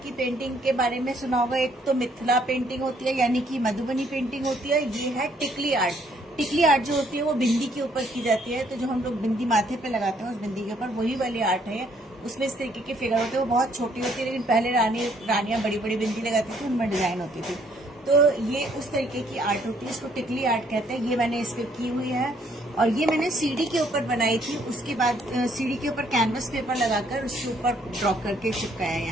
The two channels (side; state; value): both; normal; correlation 0.66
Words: पेंटिंग के बारे में सुना होगा, एक तो मिथिला पेंटिंग होती है, यानी कि मधुबनी पेंटिंग होती है। ये है टिकली आर्ट। टिकली आर्ट जो होती है वो बिंदी के ऊपर की जाती है। तो जो हम लोग बिंदी माथे पे लगाते हैं उस बिंदी के ऊपर वही वाली आर्ट है। उसमें इस तरीके के फिगर होते हैं, वो बहुत छोटी होती है, लेकिन पहले रानियां बड़ी बड़ी बिंदी लगाती थी, उनमें डिजाइन होती थी। तो ये उस तरीके की आर्ट होती है, इसको टिकली आर्ट कहते हैं। ये मैंने इस पे की हुई है, और ये मैंने सीडी के ऊपर बनाई थी। उसके बाद सीडी के ऊपर कैनवस पेपर लगाकर उसके ऊपर ड्रॉ करके चिपकाया है